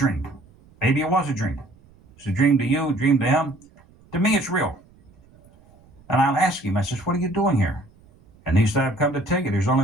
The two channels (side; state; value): right; noise; rumble, 28 dB below the sound